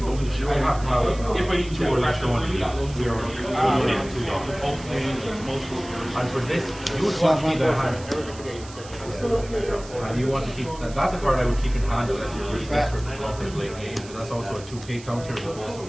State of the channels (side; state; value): right; noise; hiss, 18 dB below the sound